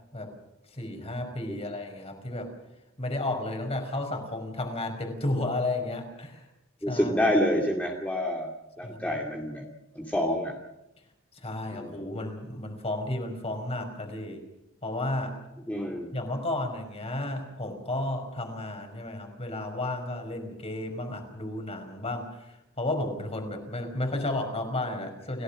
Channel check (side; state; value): both; normal; correlation 0.50